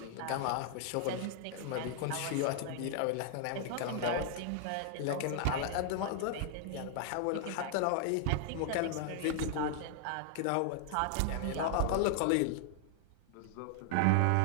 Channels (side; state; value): both; different; correlation -0.01